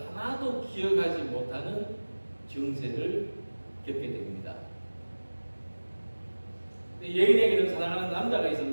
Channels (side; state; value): both; inverted; correlation -1.00